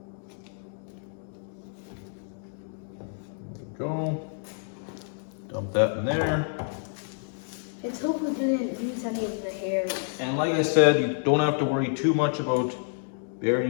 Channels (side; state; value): right; silent; digital silence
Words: Go. Dump that in there. Let's hope we didn't lose any of the hairs. And like I said, you don't have to worry too much about